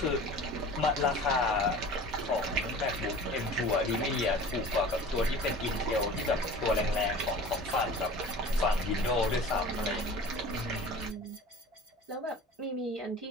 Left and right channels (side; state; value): both; normal; correlation 0.40